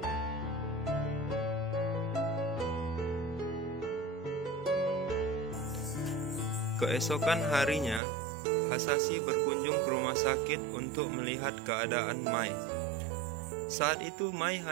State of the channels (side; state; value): left; drops out; at 8.0 s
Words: Keesokan harinya, Hisashi berkunjung ke rumah sakit untuk melihat keadaan Mai. Saat itu Mai